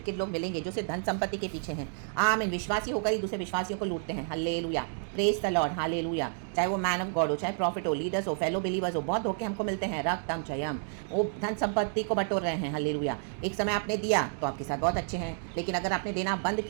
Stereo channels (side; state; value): left; silent; digital silence